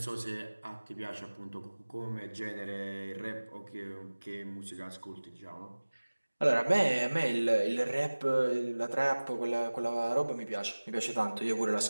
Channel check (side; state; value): both; inverted; correlation -1.00